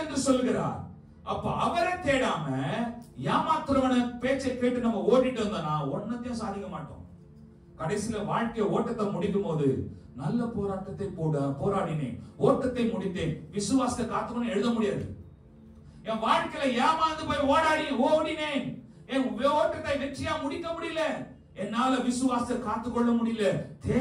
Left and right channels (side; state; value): both; identical; correlation 1.00